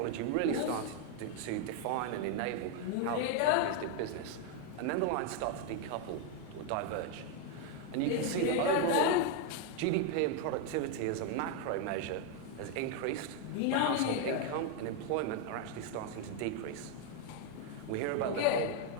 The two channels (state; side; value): different; both; correlation 0.01